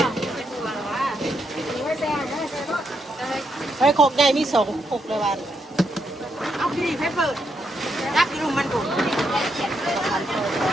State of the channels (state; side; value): normal; both; correlation 0.80